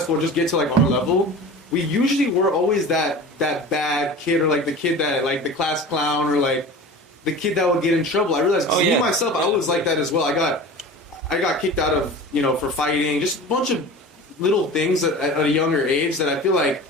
or just get to like our level. We usually were always that bad kid, or like the kid that like the class clown, or like the kid that would get in trouble. I realized me myself, I was like that as well. I got kicked out of, you know, for fighting, just a bunch of little things at a younger age that I feel like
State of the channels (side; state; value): both; normal; correlation 0.36